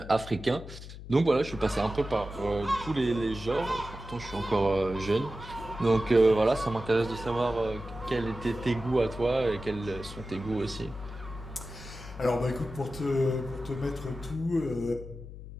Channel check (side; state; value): left; noise; hum, 13 dB below the sound